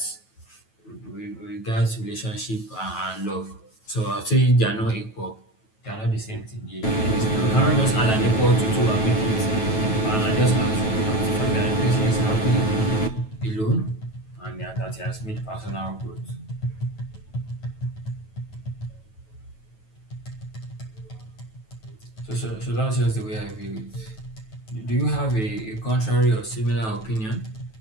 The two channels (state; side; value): late; right; 9.2 ms